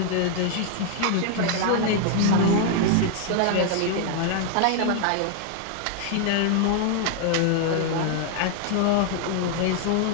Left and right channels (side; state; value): both; different; correlation 0.00